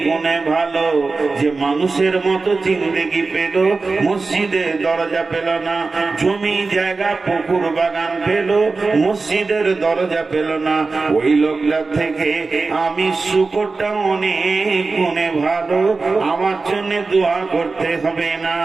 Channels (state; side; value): quieter; left; 4.0 dB